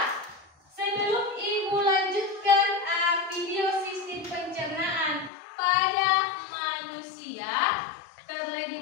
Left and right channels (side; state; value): right; drops out; at 5.3 s